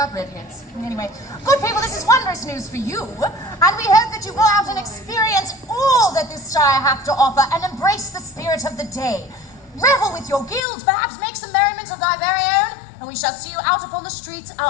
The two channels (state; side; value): drops out; right; at 10.6 s